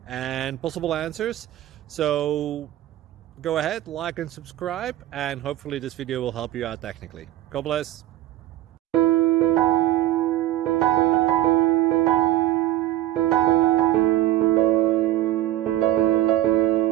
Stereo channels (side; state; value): left; quieter; 14.4 dB